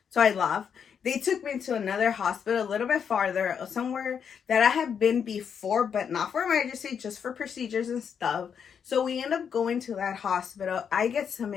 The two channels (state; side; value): quieter; right; 7.3 dB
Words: So I left. They took me to another hospital a little bit farther, somewhere that I had been before, but not for emergency, just for procedures and stuff. So we end up going to that hospital. I get